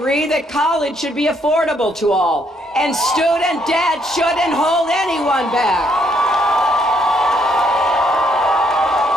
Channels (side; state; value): both; normal; correlation 0.71